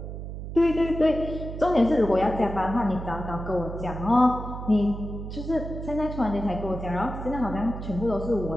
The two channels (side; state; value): right; noise; hum, 8 dB below the sound